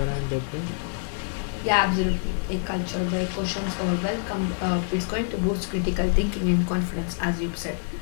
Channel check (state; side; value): silent; right; 61 dB below the other